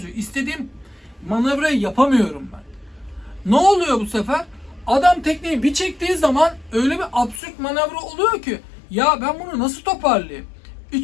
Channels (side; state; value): right; drops out; at 7.4 s